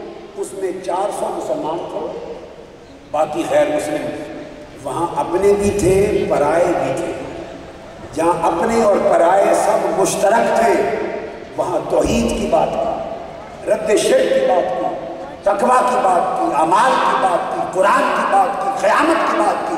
اس میں 400 مسلمان تھے، باقی غیر مسلم، وہاں اپنے بھی تھے پرائے بھی تھے، جہاں اپنے اور پرائے سب مشترک تھے وہاں توحید کی بات کی، رد شرک کی بات کی، تقویٰ کی بات کی، اعمال کی بات کی، قرآن کی بات کی، قیامت کی بات کی،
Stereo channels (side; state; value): both; identical; correlation 1.00